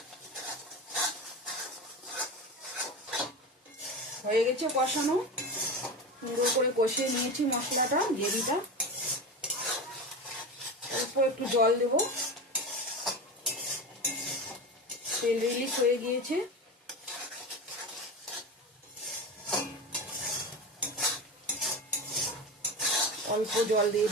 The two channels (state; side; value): normal; both; correlation 0.25